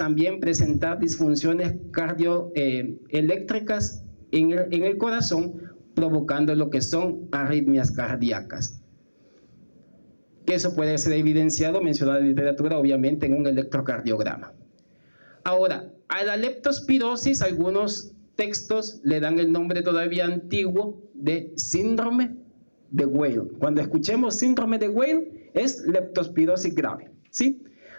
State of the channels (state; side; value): inverted; both; correlation -1.00